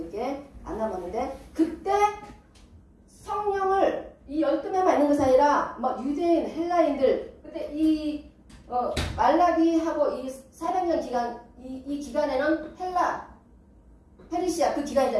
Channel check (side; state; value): both; identical; correlation 1.00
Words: 안 남았는데 그때 성령을 이 12명만 있는 것이 아니라 뭐 유대인, 헬라인들 그때 이 말라기하고 이 400년 기간 이 기간에는 페르시아 그